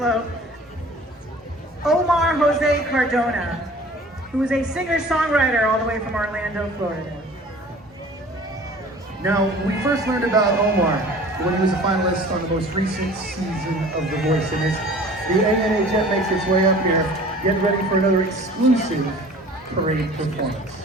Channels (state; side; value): normal; both; correlation 0.46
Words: Omar Jose Cardona, who is a singer-songwriter all the way from Orlando, Florida. Now, we first learned about Omar when he was a finalist on the most recent season of The Voice, and as the A&A jet makes its way up here, get ready for another exclusive parade performance.